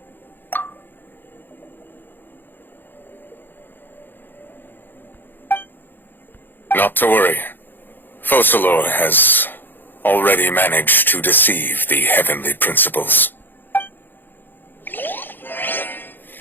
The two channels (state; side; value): late; right; 0.093 ms